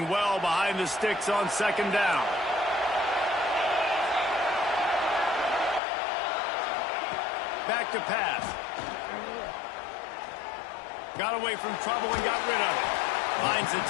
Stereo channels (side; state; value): right; drops out; at 5.8 s